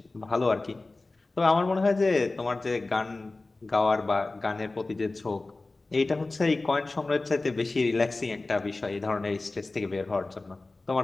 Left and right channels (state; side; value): quieter; right; 3.2 dB